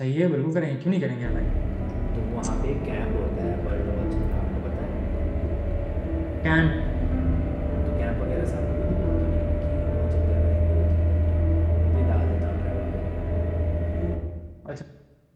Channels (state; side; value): identical; both; correlation 1.00